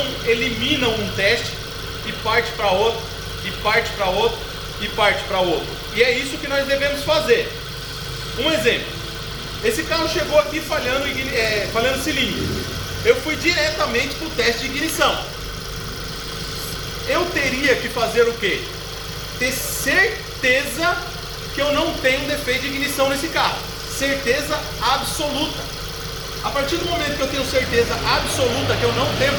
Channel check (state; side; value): identical; both; correlation 1.00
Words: eliminam um teste e parte para outro, e parte para outro, e parte para outro. E é isso que nós devemos fazer. Um exemplo: esse carro chegou aqui falhando cilindro. Eu fui diretamente para o teste de ignição. Eu teria que fazer o quê? Ter certeza que eu não tenho defeito de ignição nesse carro. Certeza absoluta. A partir do momento que eu tenho certeza absoluta que eu não tenho